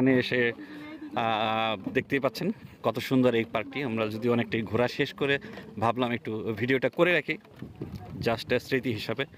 এসে দেখতেই পাচ্ছেন কত সুন্দর এই পার্কটি। আমরা যদি অনেকটাই ঘোরা শেষ করে ভাবলাম একটু ভিডিওটা করে রাখি, জাস্ট স্মৃতি হিসাবে।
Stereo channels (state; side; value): identical; both; correlation 1.00